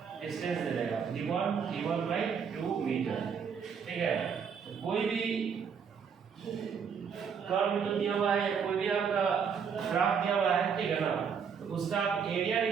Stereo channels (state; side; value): quieter; left; 6.7 dB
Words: डिस्टेंस दे देगा, d1/2 मीटर, ठीक है। कोई भी कर्व तो दिया हुआ है, कोई भी आपका ग्राफ दिया हुआ है, ठीक है ना, तो उसका आप एरिया